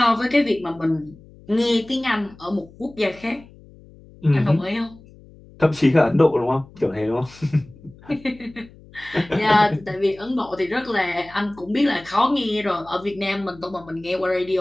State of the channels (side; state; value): left; noise; hum, 23 dB below the sound